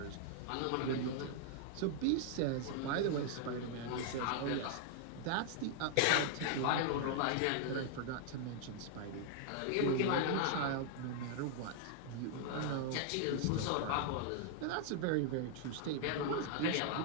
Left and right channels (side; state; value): both; different; correlation 0.00